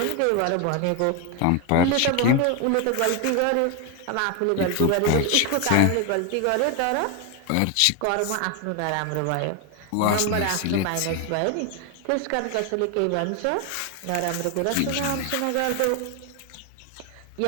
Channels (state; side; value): different; both; correlation 0.01